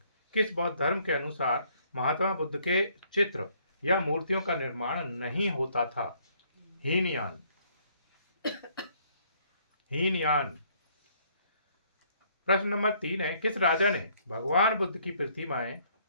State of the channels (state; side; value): inverted; both; correlation -0.65